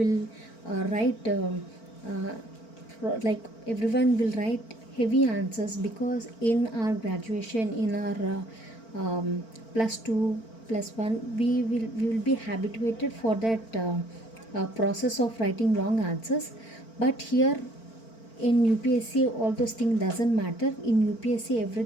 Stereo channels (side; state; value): right; late; 4.4 ms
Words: write like everyone will write heavy answers, because in our graduation, in our plus 2 plus 1, we will be habituated for that process of writing long answers. But here in UPSC all those things doesn't matter. In UPSC